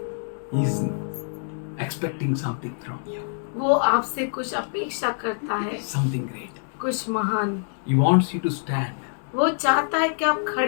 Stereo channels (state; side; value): silent; right; digital silence